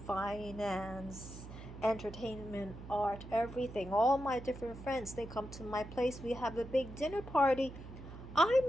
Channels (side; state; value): right; noise; hum, 13 dB below the sound